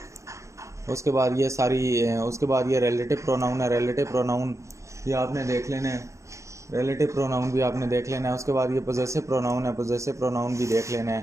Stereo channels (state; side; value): late; left; 0.15 ms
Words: उसके बाद ये रिलेटिव प्रोनाउन है, रिलेटिव प्रोनाउन ये आपने देख लेना है, रिलेटिव प्रोनाउन भी आपने देख लेना है। उसके बाद ये पोजेसिव प्रोनाउन है, पोजेसिव प्रोनाउन भी देख लेना